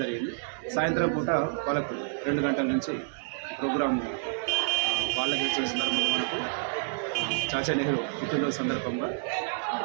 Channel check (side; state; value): left; silent; digital silence